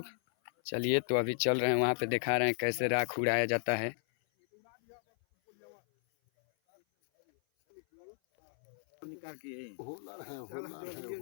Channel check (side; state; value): right; silent; 55 dB below the other